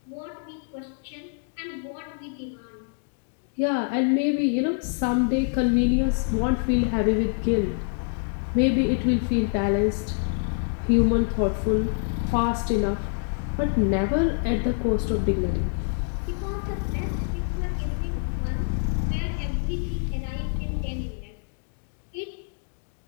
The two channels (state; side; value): silent; right; 55 dB below the other